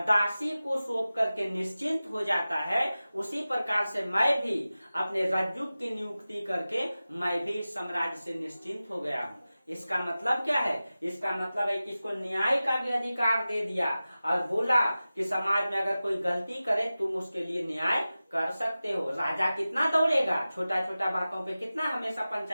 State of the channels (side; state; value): both; inverted; correlation -0.96